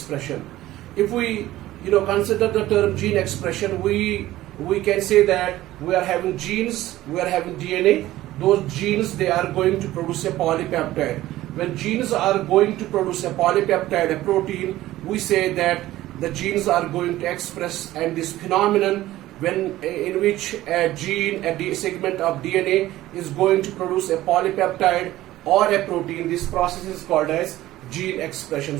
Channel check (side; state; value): left; quieter; 15.6 dB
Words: If we consider the term gene expression, we can say that we are having genes, we are having DNA. Those genes, they are going to produce a polypeptide. When genes are going to produce a polypeptide, a protein, we say that the genes are going to express, and this phenomenon in which a gene, a segment of DNA is going to produce a polypeptide or a protein, this process is called as gene expression.